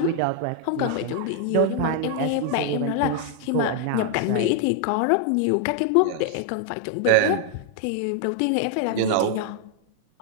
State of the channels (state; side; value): different; both; correlation 0.00